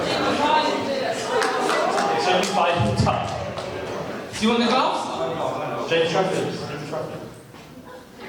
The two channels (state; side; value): identical; both; correlation 1.00